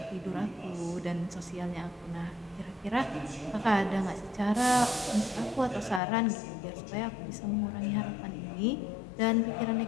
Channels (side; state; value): right; drops out; at 6.0 s